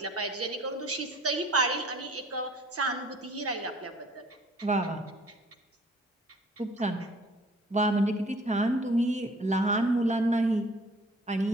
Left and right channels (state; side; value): normal; both; correlation 0.54